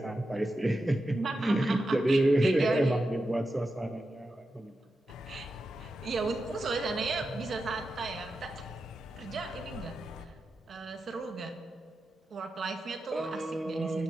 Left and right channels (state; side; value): normal; both; correlation 0.90